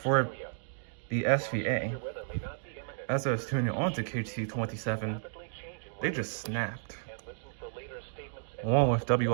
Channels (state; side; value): silent; left; digital silence